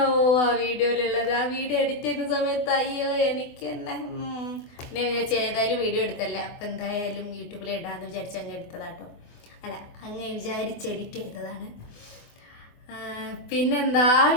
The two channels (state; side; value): late; right; 24 ms